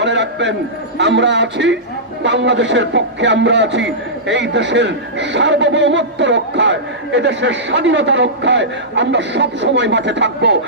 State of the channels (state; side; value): normal; both; correlation -0.16